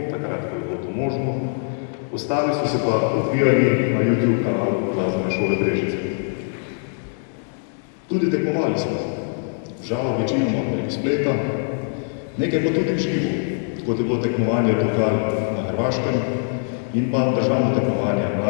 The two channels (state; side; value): silent; right; 60 dB below the other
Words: takrat, ko je bilo to možno, ostali so se pa odvijali na YouTube kanalu Glasbene šole Brežice. Tudi tekmovali smo, žal večinoma preko spleta, nekaj pa tudi v živo, kot je bilo tekmovanje Tokal na Hrvaškem in pa državno tekmovanje